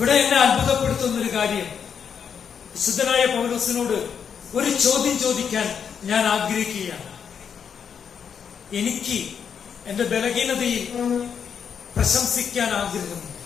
എന്നെ അത്ഭുതപ്പെടുത്തുന്ന ഒരു കാര്യം, വിശുദ്ധനായ പൗലോസിനോട് ഒരു ചോദ്യം ചോദിക്കാൻ ഞാൻ ആഗ്രഹിക്കുകയാണ്. എനിക്ക് എന്റെ ബലഹീനതയിൽ പ്രശംസിക്കാൻ ആഗ്രഹമുണ്ട്.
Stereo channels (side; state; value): right; quieter; 7.3 dB